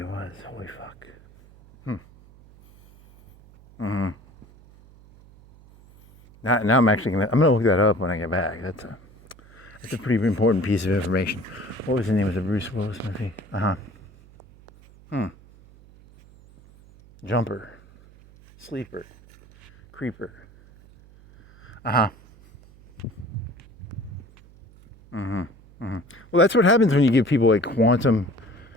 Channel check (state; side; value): noise; right; hum, 24 dB below the sound